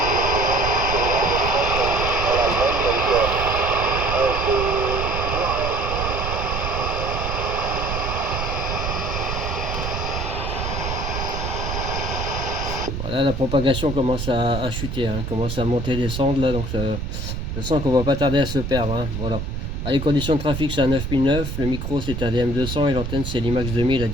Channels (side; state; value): right; noise; rumble, 4 dB below the sound